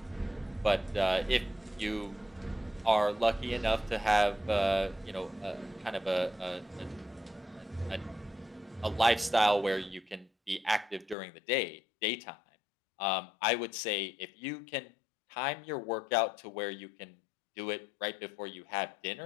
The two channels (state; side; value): drops out; right; at 11.2 s